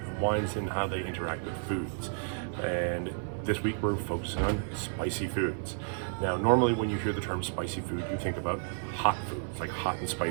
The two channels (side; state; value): left; silent; digital silence